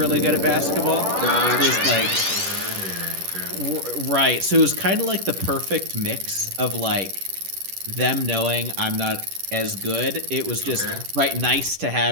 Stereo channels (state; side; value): late; left; 10 ms